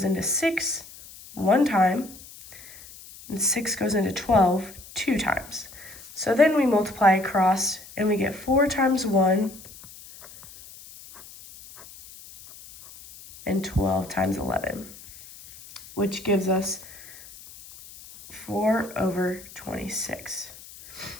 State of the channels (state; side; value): noise; left; hiss, 18 dB below the sound